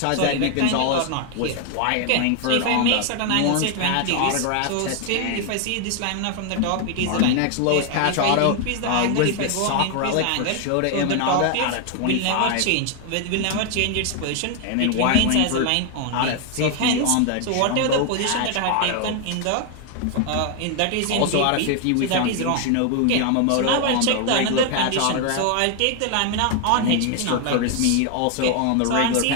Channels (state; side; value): different; both; correlation 0.00